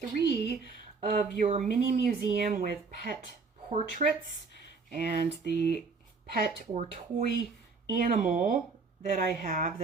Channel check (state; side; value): quieter; left; 4.6 dB